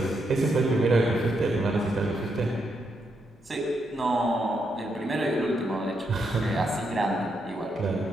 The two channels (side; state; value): both; normal; correlation 0.80